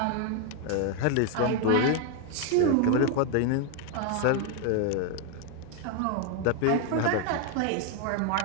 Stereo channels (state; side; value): different; both; correlation 0.01